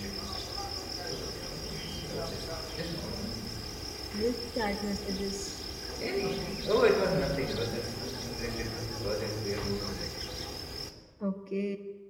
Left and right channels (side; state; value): both; identical; correlation 1.00